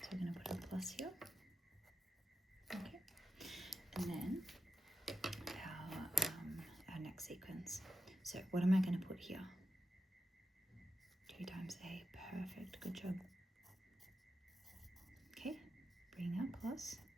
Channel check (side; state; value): both; normal; correlation 0.88